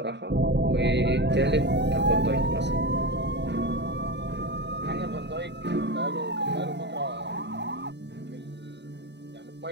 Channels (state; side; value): late; left; 0.50 ms